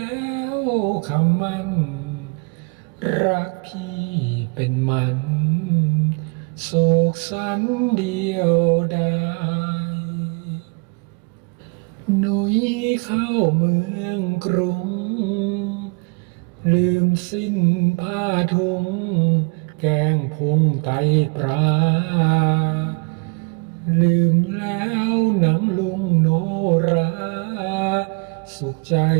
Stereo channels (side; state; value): left; quieter; 34.5 dB